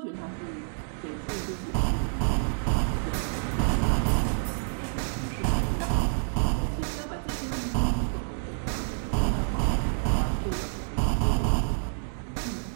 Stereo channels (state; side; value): silent; left; 59 dB below the other